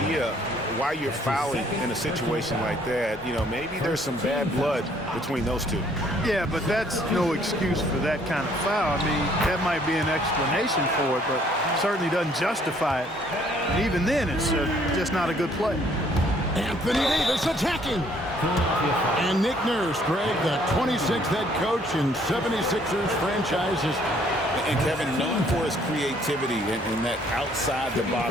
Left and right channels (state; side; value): normal; both; correlation 0.63